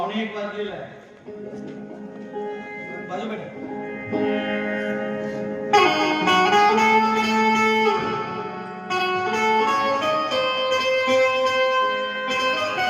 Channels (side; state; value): both; identical; correlation 1.00